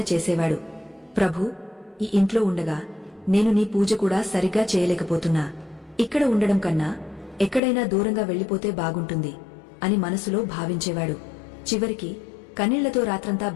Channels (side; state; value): right; drops out; at 7.6 s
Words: చేసేవాడు. ప్రభూ, ఈ ఇంట్లో ఉండగా నేను నీ పూజ కూడా సరిగ్గా చేయలేకపోతున్నా, ఇక్కడ ఉండడం కన్నా ఎక్కడైనా దూరంగా వెళ్లిపోతే బాగుంటుంది అని మనసులో భావించేవాడు. చివరికి కన్నీళ్లతో రాత్రంతా